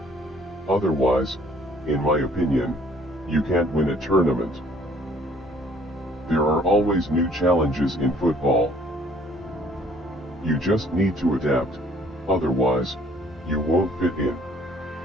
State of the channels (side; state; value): both; normal; correlation 0.59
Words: Otherwise, in my opinion, you can't win a tournament. There are always new challenges in football. You just need to adapt, otherwise, you won't fit in.